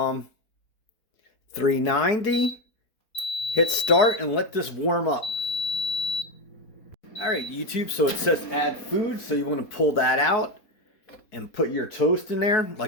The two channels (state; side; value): late; right; 4.7 ms